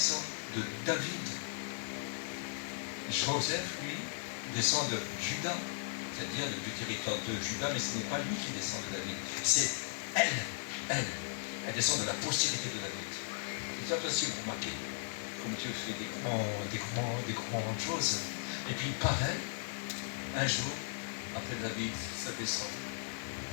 de David. Joseph, lui, descend de Juda, c'est-à-dire du territoire de Juda, mais ce n'est pas lui qui descend de David. C'est elle. Elle descend de la postérité de David. C'est ça aussi, vous remarquez. Comme Dieu fait des grandes choses. Et puis pareil, un jour, après David, ça descend.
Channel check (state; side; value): silent; right; digital silence